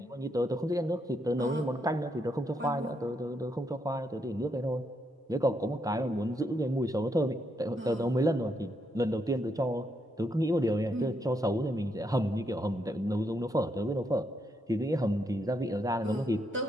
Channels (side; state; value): both; normal; correlation 0.78